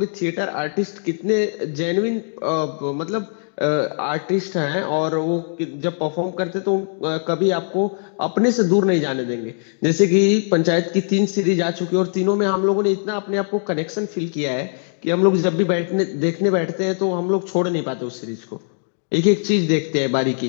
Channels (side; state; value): right; silent; digital silence